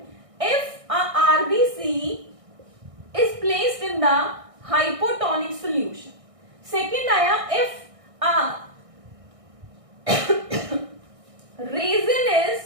if a RBC is placed in the hypotonic solution। second आया if a resin is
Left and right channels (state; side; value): late; left; 1.6 ms